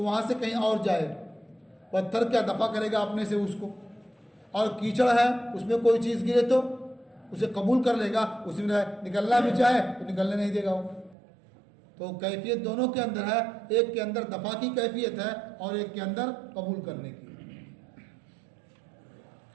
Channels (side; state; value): left; drops out; at 11.2 s